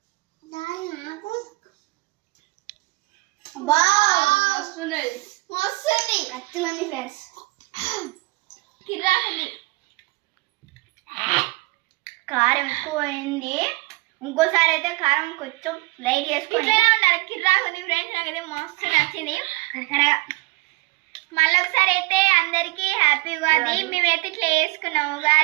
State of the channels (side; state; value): left; quieter; 23.8 dB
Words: ఫ్రెండ్స్ కిరాకుంది కారం ఎక్కువ అయింది. ఇంకోసారి అయితే కారం కొంచెం లైట్ చేసుకొని ఉండాలి. కిరాకుంది ఫ్రెండ్స్ నాకైతే మస్తు నచ్చింది. మళ్ళీ ఒకసారి అయితే అందరికీ హ్యాపీ ఉగాది. మేమైతే ఇట్లా వేసుకున్నాము